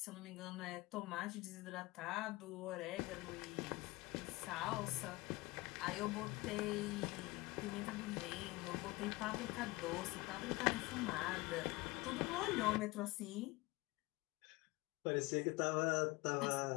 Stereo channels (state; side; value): quieter; right; 21.6 dB